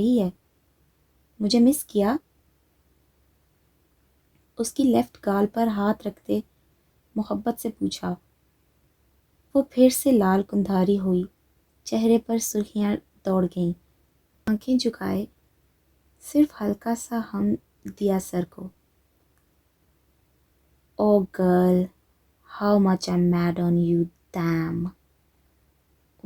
ہے۔ مجھے مس کیا؟ اس کی لیفٹ گال پر ہاتھ رکھتے محبت سے پوچھا۔ وہ پھر سے لال کندھاری ہوئی، چہرے پر سرخیاں دوڑ گئیں، آنکھیں جھکائے صرف ہلکا سا ہم دیا سر کو۔ Oh girl, how much I am mad on you, damn.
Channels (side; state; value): both; identical; correlation 1.00